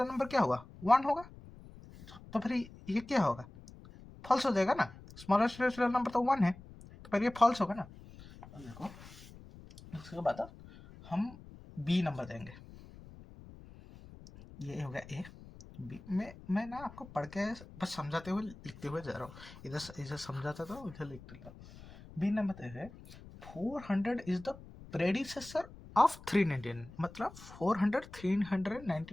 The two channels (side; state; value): left; noise; rumble, 18 dB below the sound